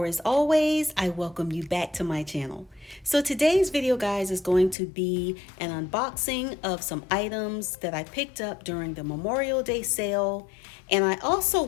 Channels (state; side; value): drops out; right; at 4.8 s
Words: as always, I welcome you back to my channel. So today's video guys is going to be an unboxing of some items that I picked up during the Memorial Day sale. And I also